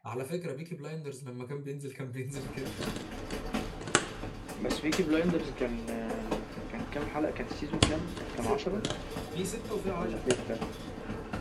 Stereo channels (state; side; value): identical; both; correlation 1.00